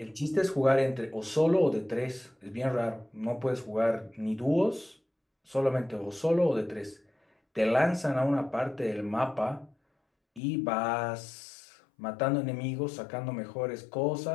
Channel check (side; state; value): right; drops out; at 10.4 s